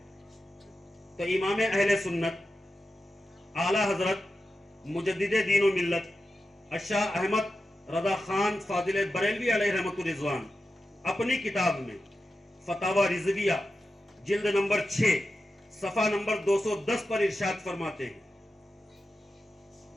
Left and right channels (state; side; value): normal; both; correlation 0.91